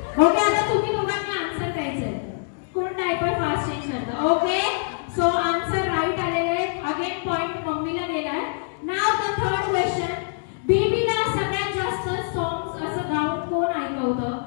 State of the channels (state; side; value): silent; right; digital silence